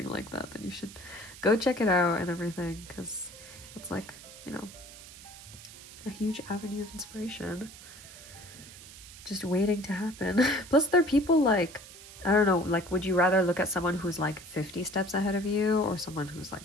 like that, then you should go check it out and everything, because it's like, a huge avenue of inspiration just waiting to happen. Plus there are people like, I don't know, like would you rather look at someone who's like 50 steps ahead of you or someone who's like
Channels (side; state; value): right; noise; hiss, 17 dB below the sound